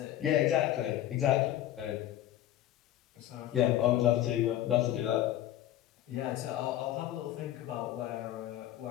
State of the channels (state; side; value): quieter; right; 12.8 dB